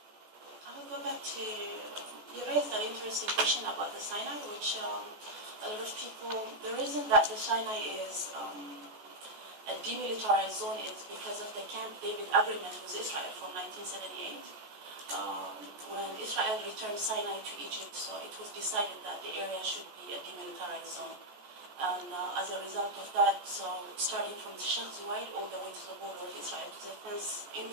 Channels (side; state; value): left; late; 14 ms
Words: I will go back to, you raised an interesting question about the Sinai, which a lot of people, the reason that the Sinai is a demilitarized zone is because of the Camp David agreement with Israel from 1978. When Israel returned Sinai to Egypt, so it was decided that the area should be a demilitarized zone. And as a result of that, so starting from Sheikh Zayed all the way to the border of Israel, to the fence